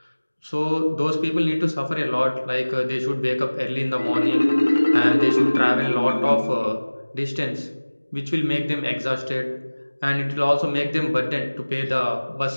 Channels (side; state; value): both; inverted; correlation -1.00